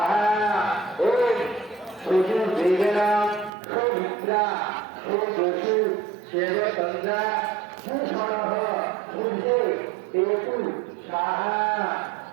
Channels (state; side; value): drops out; left; at 3.5 s